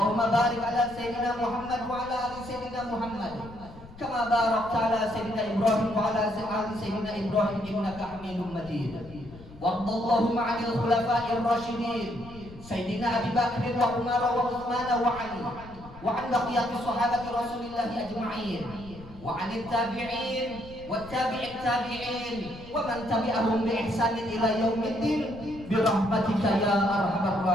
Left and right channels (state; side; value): noise; left; rumble, 18 dB below the sound